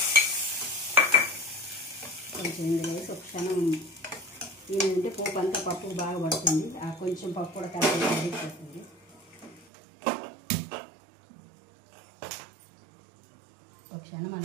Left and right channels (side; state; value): left; drops out; at 9.7 s